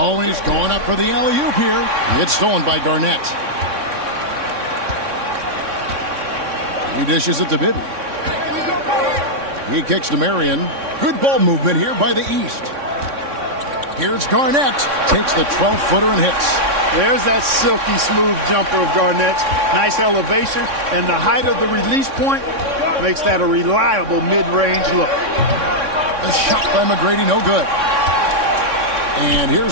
he's going up for the alley-oop here. It's stolen by Garnett. He dishes it to Bibby. He kicks to Marion. Good ball movement here by the East. Here's Garnett. Takes the 12-footer and hits. There's that silky smooth jumper of Garnett's. Nice elevation, and the height of the release point makes that a reliable mid-range look. The shot by McGrady, no good. And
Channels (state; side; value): late; left; 3.6 ms